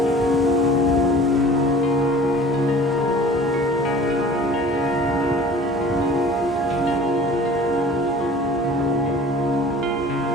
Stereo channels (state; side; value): normal; both; correlation 0.44